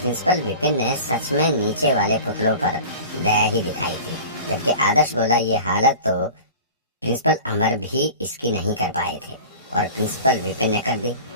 विपिन ने सच में नीचे वाले पुतलों पर दया ही दिखाई थी। जबकि आदर्श बोला, ये हालत तो प्रिंसिपल अमर भी इसकी नहीं कर पाए थे और प्रिंसिपल विपिन ने कर दी।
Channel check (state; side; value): inverted; both; correlation -0.38